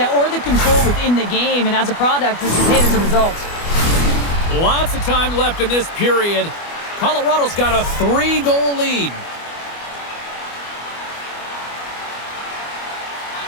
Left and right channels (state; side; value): late; right; 25 ms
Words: or the control within the game, and as a product, this is hit as a result. Lots of time left in this period. Colorado's got a 3-goal lead.